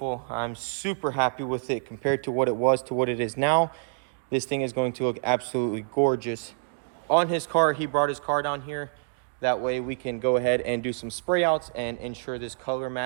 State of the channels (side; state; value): left; silent; digital silence